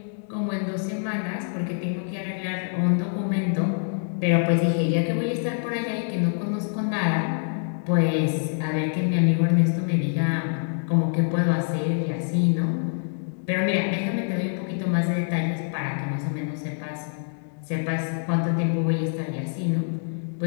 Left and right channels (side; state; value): right; silent; 61 dB below the other